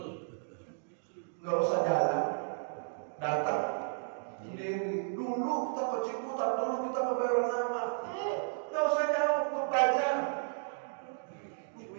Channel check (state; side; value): silent; left; digital silence